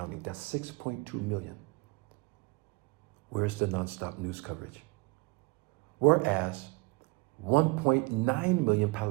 That's 6.2 million. Where's the nonstop news coverage? Whereas 1.9 million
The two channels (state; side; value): quieter; left; 26.4 dB